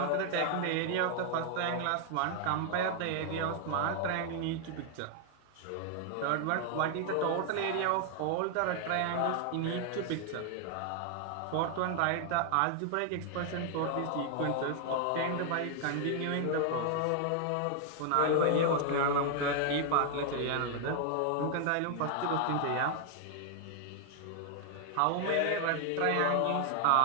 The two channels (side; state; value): both; different; correlation 0.00